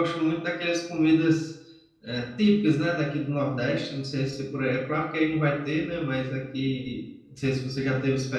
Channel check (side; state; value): both; identical; correlation 1.00